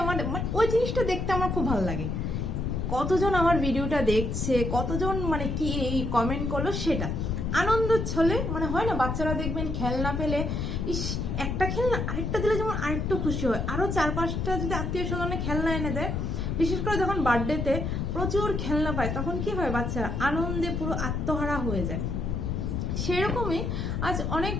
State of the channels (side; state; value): left; noise; rumble, 1 dB below the sound